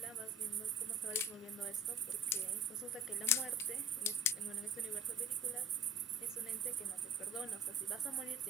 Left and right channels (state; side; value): normal; both; correlation 0.39